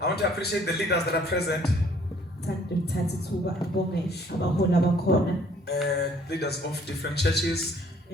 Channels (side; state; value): both; normal; correlation 0.59